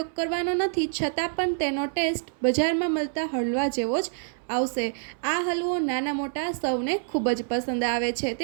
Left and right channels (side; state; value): left; silent; 60 dB below the other